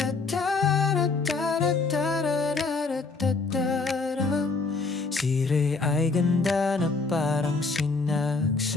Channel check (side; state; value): right; quieter; 4.0 dB